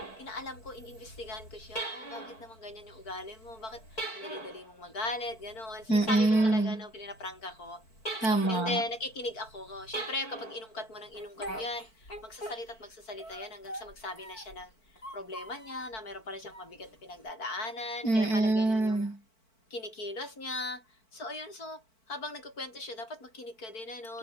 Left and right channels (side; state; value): right; late; 4.5 ms